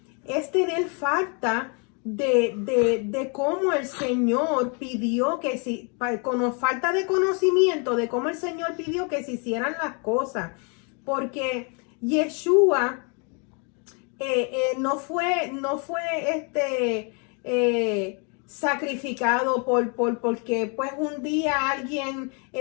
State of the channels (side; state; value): right; quieter; 35.7 dB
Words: es tener falta de cómo el Señor pidió que si, con falta de conocimiento de cómo el Señor pidió que se hicieran las cosas, porque Yeshua no fue sacrificado porque pues un día alguien